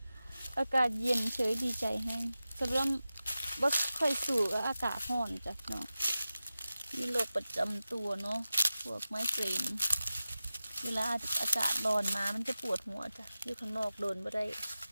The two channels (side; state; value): both; inverted; correlation -0.94